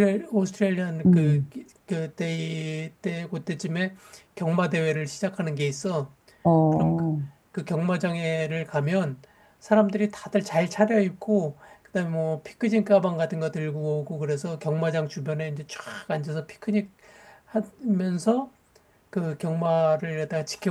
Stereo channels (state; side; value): identical; both; correlation 1.00